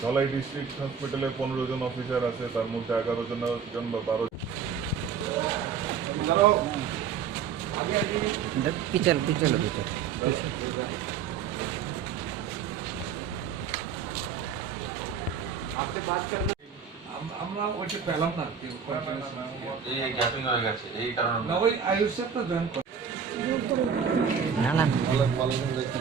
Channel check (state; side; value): quieter; left; 6.8 dB